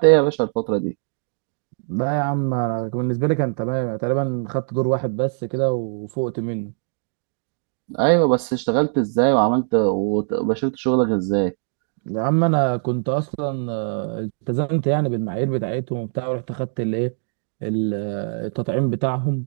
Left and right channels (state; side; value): silent; left; digital silence